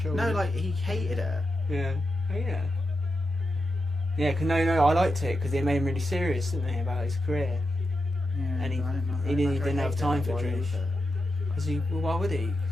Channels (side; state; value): both; normal; correlation 0.88